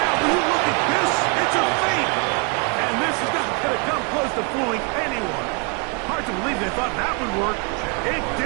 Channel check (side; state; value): left; quieter; 33.4 dB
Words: when you look at this, it's a fake. And this is not going to come close to fooling anyone. Hard to believe they thought that would work. It